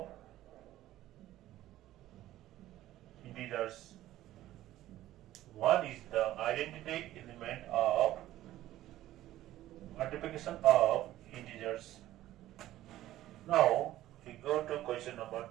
integers. One is the identity element of multiplication of integers. Now we go to question number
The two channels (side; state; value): left; quieter; 14.4 dB